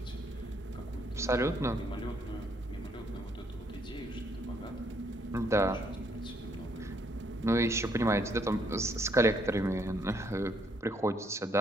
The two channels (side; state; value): both; normal; correlation 0.70